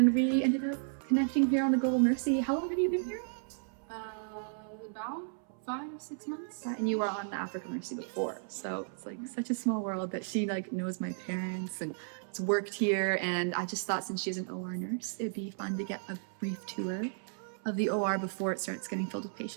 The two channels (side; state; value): left; silent; 55 dB below the other